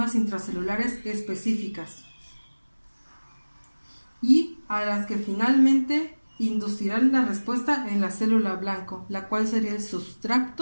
intracelulares específicas y a las que finalmente inducirán la respuesta en la célula blanco, la cual sería el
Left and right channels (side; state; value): both; inverted; correlation -1.00